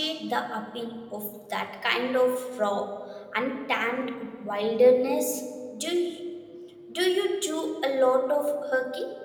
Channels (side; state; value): both; identical; correlation 1.00